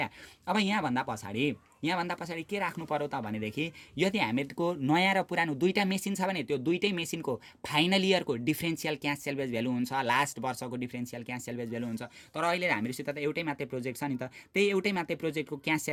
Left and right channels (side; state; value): both; identical; correlation 1.00